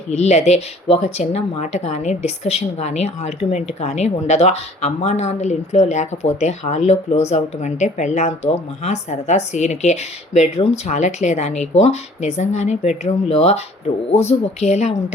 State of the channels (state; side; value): normal; both; correlation 0.54